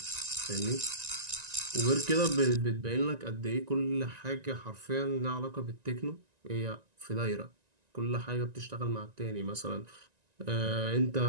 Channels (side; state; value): left; late; 1.9 ms